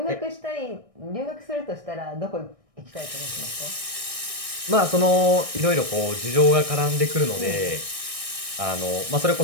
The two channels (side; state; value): left; late; 1.6 ms